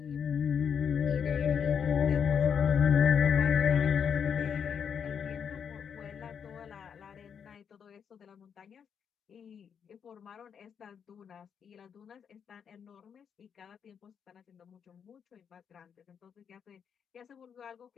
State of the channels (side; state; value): right; quieter; 7.4 dB